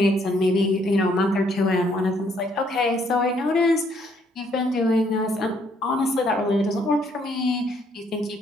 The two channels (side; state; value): both; normal; correlation 0.68